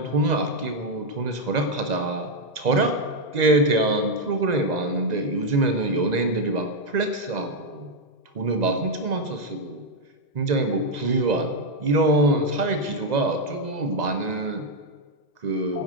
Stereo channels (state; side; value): late; left; 2.0 ms